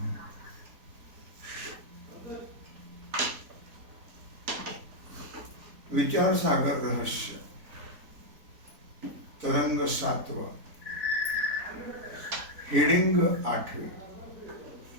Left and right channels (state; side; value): late; left; 4.0 ms